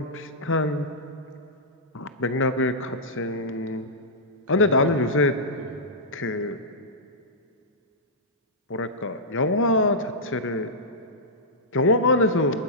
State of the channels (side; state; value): both; normal; correlation -0.13